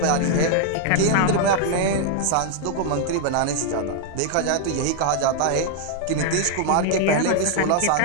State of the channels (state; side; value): different; both; correlation 0.00